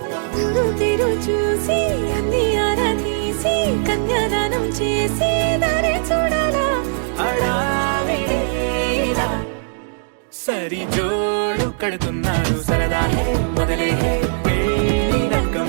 తిరు చూసి అన్ని ఆరాధీసి కన్యాదానం చేసి దారి చూడాలా అడావిడేలా సరి జోడు కడుతున్నారు సరదా హే మొదలే హే పెళ్లి రకం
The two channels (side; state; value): left; silent; digital silence